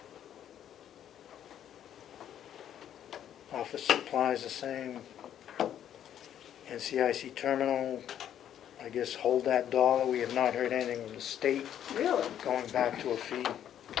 Office supplies the same. NCIC terminal, I guess hold that dollar. We have not heard anything from the state Really? going back to a fee.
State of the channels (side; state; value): right; quieter; 10.3 dB